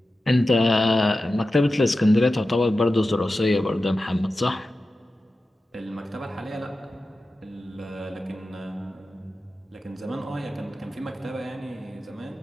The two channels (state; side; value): normal; both; correlation 0.93